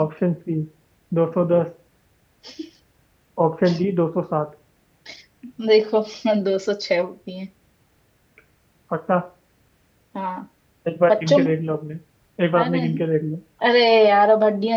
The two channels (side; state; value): both; identical; correlation 1.00